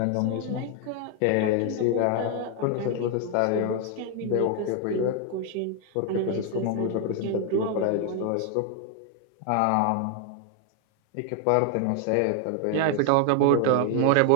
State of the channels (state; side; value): different; both; correlation 0.00